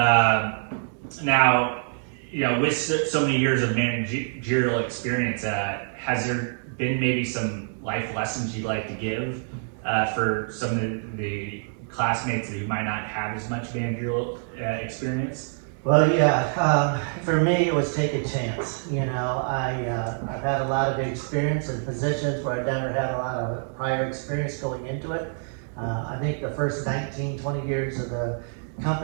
Now, with so many years of managerial experience, has there been maybe some life lessons you'd like to give for some of the classmates who might not have as much managerial experience? Well, yeah, for me it was take a chance. I've had a lot of experience in positions where I've never had a lot of prior experience going into it. I think the first 19, 20 years of the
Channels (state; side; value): silent; left; 61 dB below the other